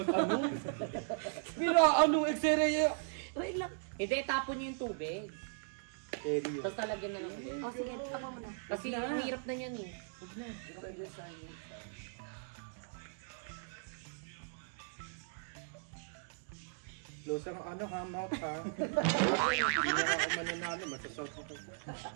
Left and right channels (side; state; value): left; silent; digital silence